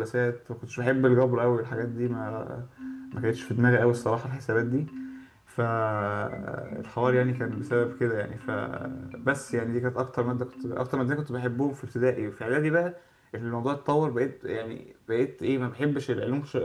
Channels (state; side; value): identical; both; correlation 1.00